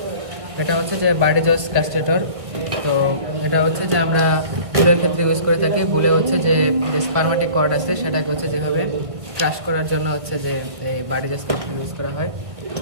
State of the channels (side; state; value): left; late; 1.7 ms